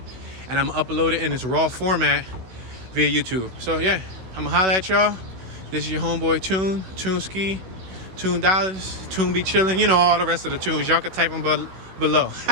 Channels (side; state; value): left; late; 16 ms